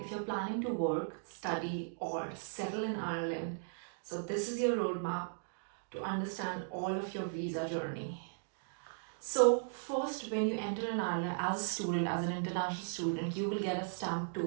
If you're planning to work, study or settle in Ireland, so this is your roadmap to understand all of your visa journey. So first, when you enter in Ireland as a student, as an international student, you will get a stamp 2,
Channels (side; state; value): left; silent; digital silence